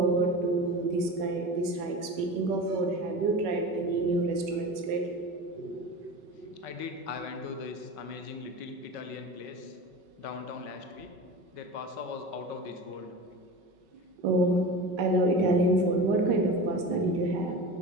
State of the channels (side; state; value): left; late; 5.3 ms